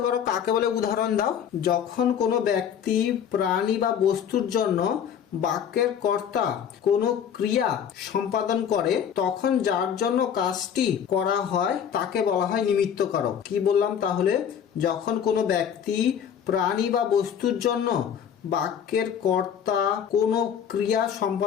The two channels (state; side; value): quieter; right; 8.4 dB